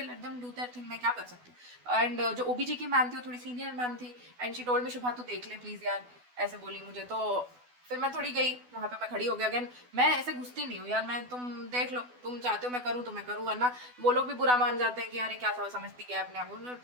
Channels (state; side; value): late; left; 12 ms